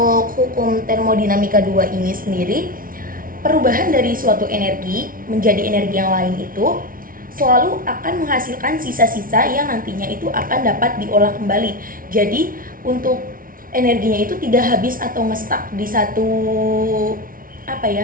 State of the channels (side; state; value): left; late; 0.41 ms